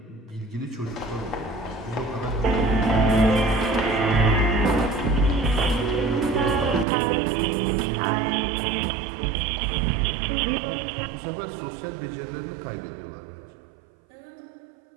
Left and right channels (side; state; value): left; drops out; at 6.9 s